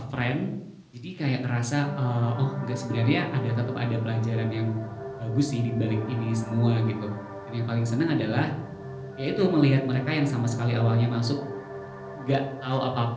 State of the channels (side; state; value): both; identical; correlation 1.00